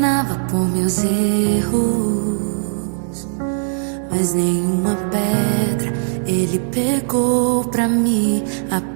por meus erros, mas nenhuma pedra ele pegou pra me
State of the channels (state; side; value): silent; left; 67 dB below the other